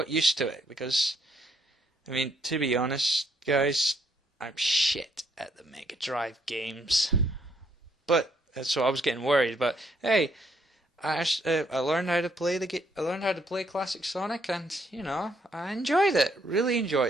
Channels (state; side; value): normal; both; correlation 0.71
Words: used to it, because, I mean, to be honest, guys, I'm shit at the Mega Drive games. But, so I was getting worried, but hey, I learned how to play I learned how to play classic Sonic, and, I enjoyed it, really